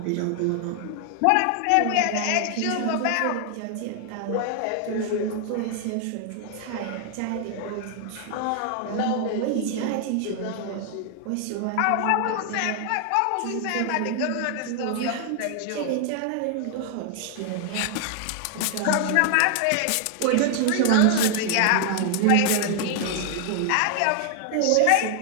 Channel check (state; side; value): different; both; correlation 0.00